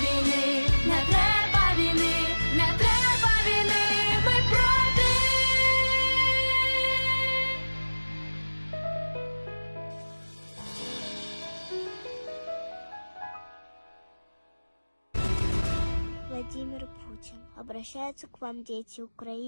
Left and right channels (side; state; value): both; inverted; correlation -1.00